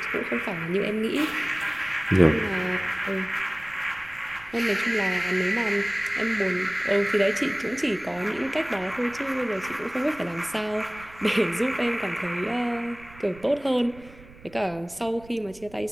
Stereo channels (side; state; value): right; noise; rumble, 21 dB below the sound